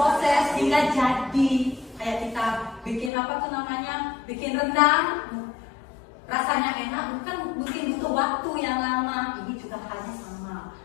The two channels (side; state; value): right; drops out; at 3.1 s